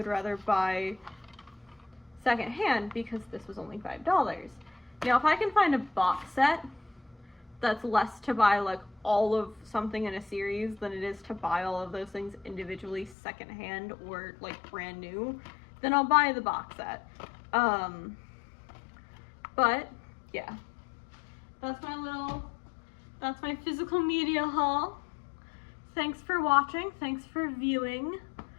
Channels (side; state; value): right; drops out; at 13.2 s